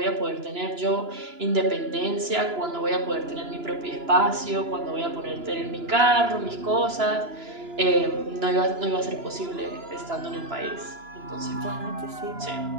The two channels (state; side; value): late; left; 2.9 ms